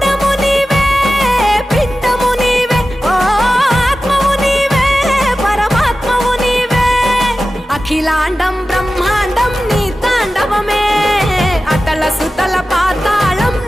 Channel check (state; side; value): normal; both; correlation 0.95